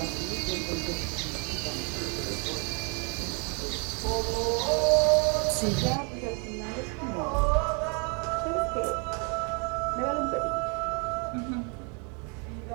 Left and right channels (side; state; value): left; quieter; 35.7 dB